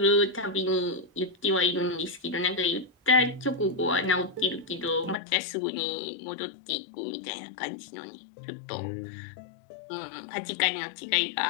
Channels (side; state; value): right; drops out; at 5.2 s